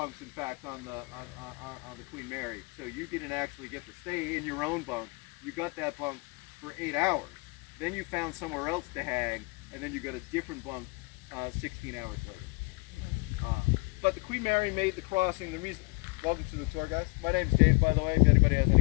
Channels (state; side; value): quieter; right; 29.9 dB